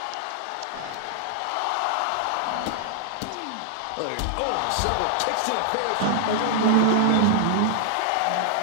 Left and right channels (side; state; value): both; different; correlation 0.00